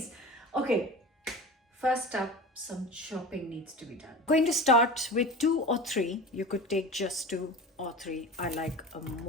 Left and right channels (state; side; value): normal; both; correlation 0.33